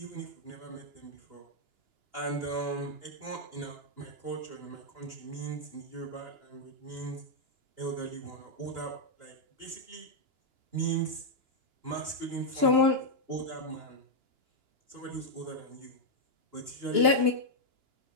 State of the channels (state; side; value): late; left; 2.9 ms